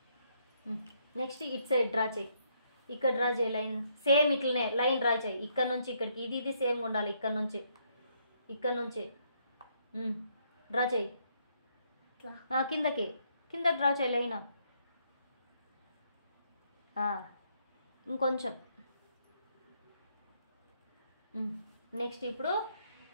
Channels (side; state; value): both; inverted; correlation -0.72